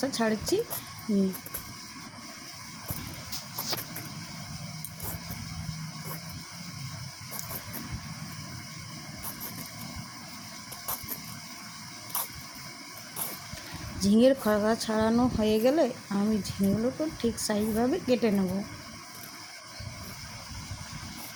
ছাড়াচ্ছি। ঝিঙের খোসা ছাড়ানো হয়ে গেলে আমি ঝিঙেগুলোকে ঠিক সাইজভাবে কেটে নেব।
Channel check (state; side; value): identical; both; correlation 1.00